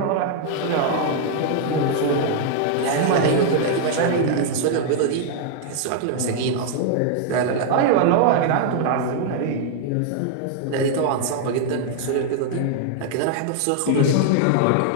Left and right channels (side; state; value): both; different; correlation 0.00